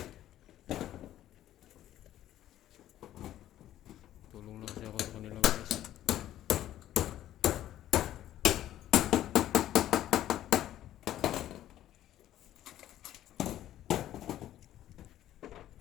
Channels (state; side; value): quieter; right; 12.8 dB